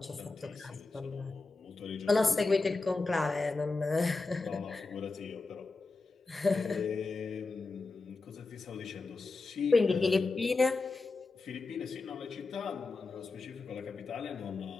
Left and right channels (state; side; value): quieter; right; 3.7 dB